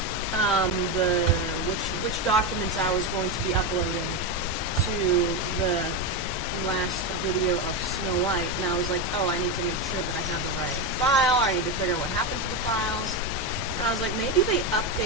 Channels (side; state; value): both; normal; correlation 0.12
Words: which documents I was going to be uploading to the last video of Snow White, and I was like, oh, I need to make sure that I have the right file, I need to figure out what happened to the files, and I was like, maybe they